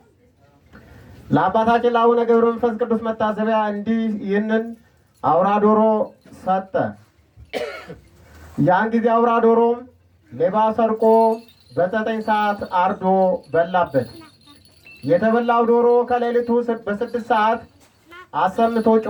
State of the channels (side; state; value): both; identical; correlation 1.00